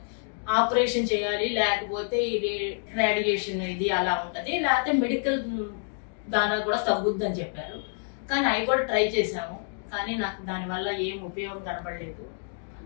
ఆపరేషన్ చేయాలి, లేకపోతే ఇది రేడియేషన్ ఇది అలా ఉంటది, లేకపోతే మెడికల్ దాని కూడా తగ్గుద్ది అని చెప్పారు. కానీ అవి కూడా ట్రై చేశాము, కానీ నాకు దానివల్ల ఏం ఉపయోగం కనపడలేదు.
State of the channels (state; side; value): silent; right; digital silence